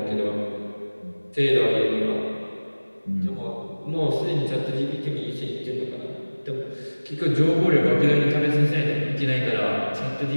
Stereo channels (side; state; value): both; inverted; correlation -1.00